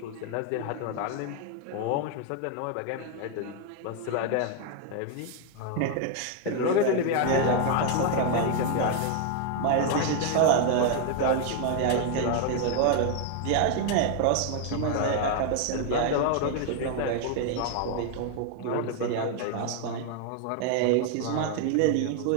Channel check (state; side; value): different; both; correlation 0.00